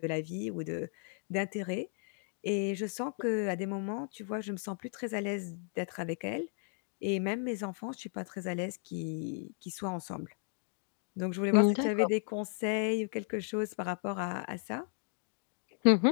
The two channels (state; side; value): silent; right; 54 dB below the other